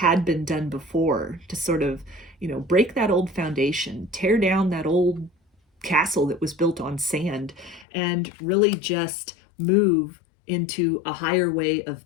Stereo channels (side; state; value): right; drops out; at 7.9 s